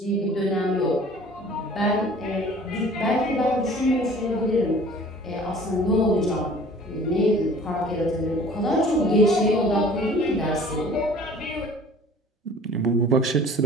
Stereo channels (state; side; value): normal; both; correlation 0.49